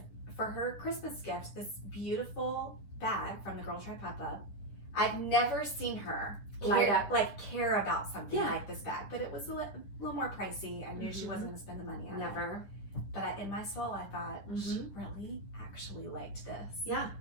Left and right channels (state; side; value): late; right; 10 ms